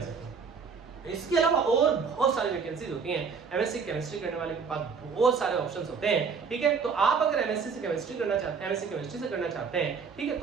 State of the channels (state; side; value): quieter; left; 5.7 dB